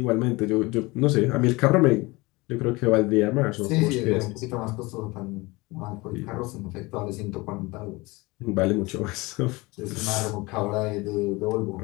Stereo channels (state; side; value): quieter; right; 23.3 dB